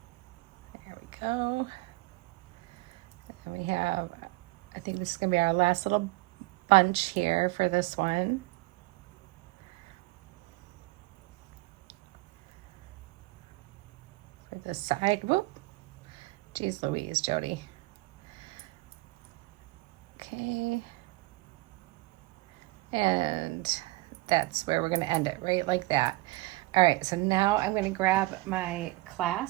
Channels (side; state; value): left; quieter; 21.3 dB